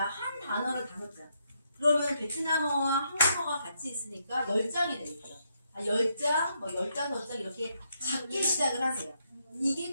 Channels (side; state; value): both; inverted; correlation -0.77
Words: 한 단어를 5장. 그러면 베트남어와 한국어가 같이 있으니까 10장이 되겠죠. 10장, 15장 이렇게 작게 시작을 하세요. 이게